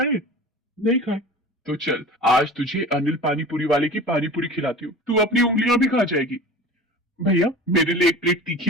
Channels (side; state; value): both; normal; correlation 0.37